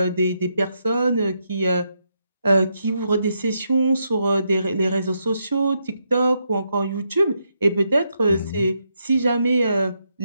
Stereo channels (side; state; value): both; inverted; correlation -0.81